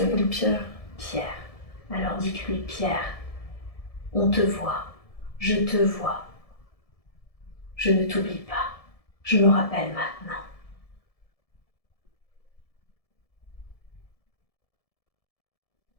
Pierre. Pierre. Alors dites-lui, Pierre, on te voit, je te vois. Je ne t'oublie pas, je me rappelle maintenant.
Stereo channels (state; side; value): late; right; 1.7 ms